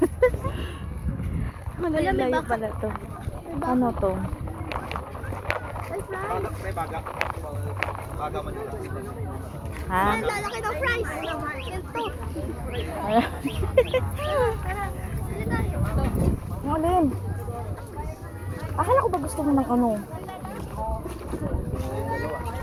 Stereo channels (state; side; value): identical; both; correlation 1.00